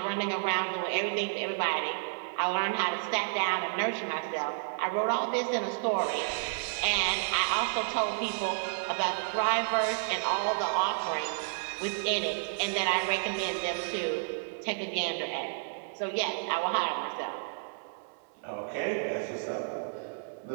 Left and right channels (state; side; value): silent; left; 57 dB below the other